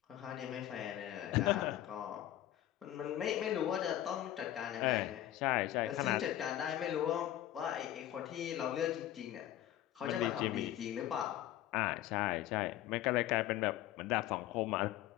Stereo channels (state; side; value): quieter; right; 13.1 dB